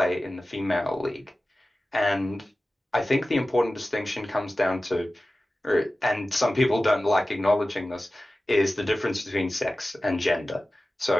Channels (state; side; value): normal; both; correlation 0.96